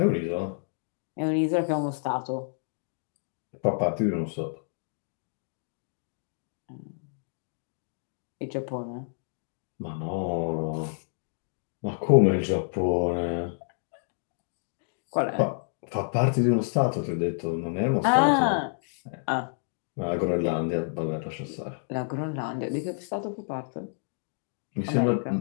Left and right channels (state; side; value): silent; right; digital silence